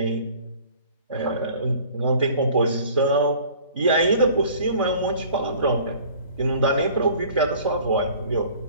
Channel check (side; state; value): both; inverted; correlation -0.49